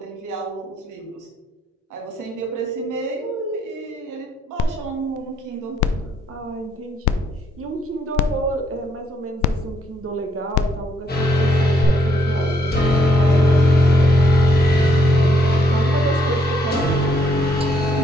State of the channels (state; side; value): normal; both; correlation 0.71